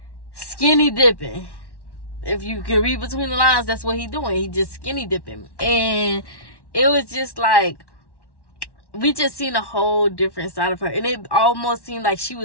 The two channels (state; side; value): late; right; 1.1 ms